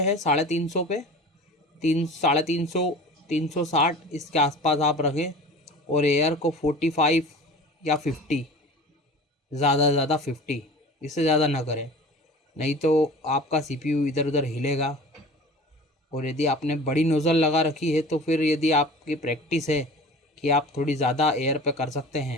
हैं 350 पे, 350, 360 इसके आसपास आप रखें। और एयर को 45 या 50, ज़्यादा से ज़्यादा 50, इससे ज़्यादा ना करें, नहीं तो आपका सीपीयू इधर उधर हिलेगा। और यदि आपने बड़ी नोज़ल लगा रखी है तो फिर यदि आपकी प्रैक्टिस है कि आप थोड़ी ज़्यादा एयर पे कर सकते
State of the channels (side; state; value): both; normal; correlation 0.40